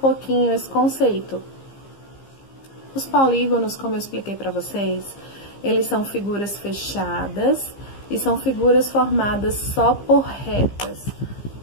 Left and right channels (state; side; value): late; right; 15 ms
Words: esse conceito. Os polígonos, como eu expliquei para vocês, eles são figuras fechadas e são figuras formadas só por retas.